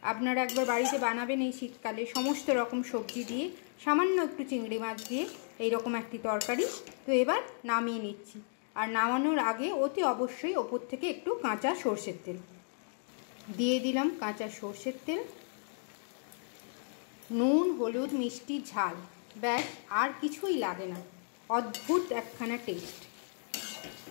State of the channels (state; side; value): silent; right; digital silence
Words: আপনারা একবার বাড়িতে বানাবেন এই শীতকালে, সমস্ত রকম সবজি দিয়ে, সামান্য একটু চিংড়ি মাছ দিয়ে এইরকম একটি তরকারি। তো এবার নামিয়ে নিচ্ছি। আর নামানোর আগে অতি অবশ্যই ওপর থেকে একটু কাঁচা সর্ষের তেল দিয়ে দিলাম। কাঁচা সর্ষের তেল, নুন, হলুদ, মিষ্টি, ঝাল, ব্যাস, আর কিছুই লাগে না। অদ্ভুত একখানা টেস্ট।